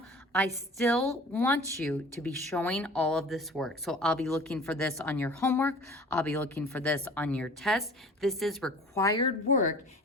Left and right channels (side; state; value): both; normal; correlation 0.44